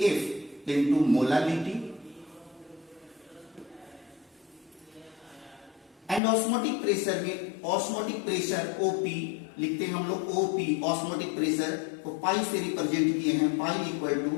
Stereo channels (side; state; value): right; drops out; at 6.2 s